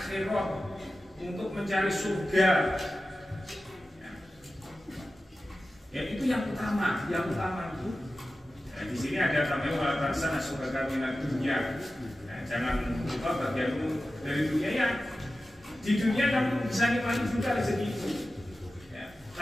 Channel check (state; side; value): normal; both; correlation 0.94